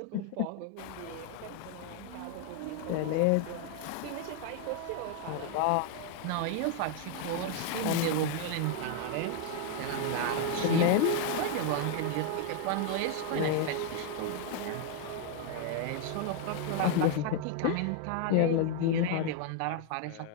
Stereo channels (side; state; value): both; different; correlation 0.01